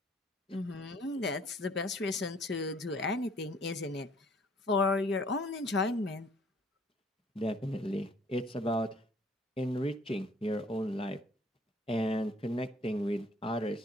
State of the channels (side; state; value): both; normal; correlation 0.58